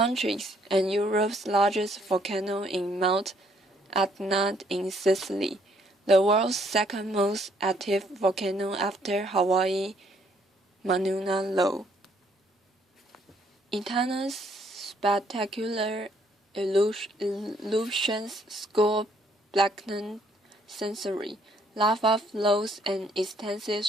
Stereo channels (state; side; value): normal; both; correlation 0.67